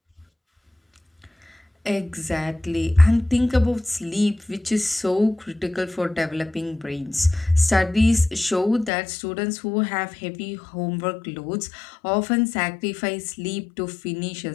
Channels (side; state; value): right; drops out; at 8.9 s